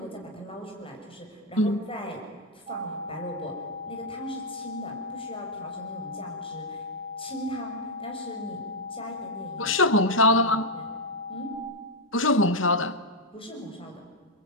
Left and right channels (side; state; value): both; normal; correlation -0.04